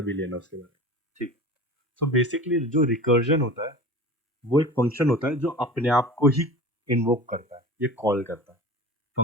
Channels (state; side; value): normal; both; correlation 0.36